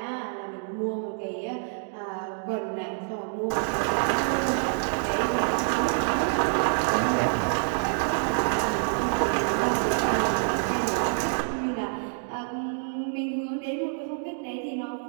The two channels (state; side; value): silent; left; digital silence